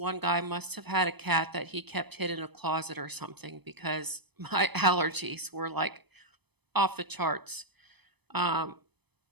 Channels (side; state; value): left; late; 0.99 ms